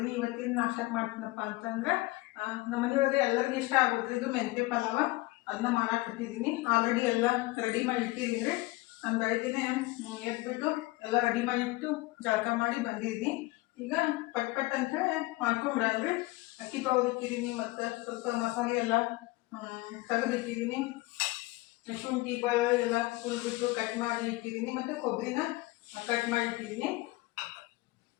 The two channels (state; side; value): quieter; right; 21.2 dB